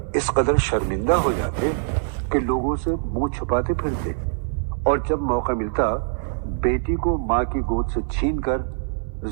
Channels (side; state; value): left; silent; digital silence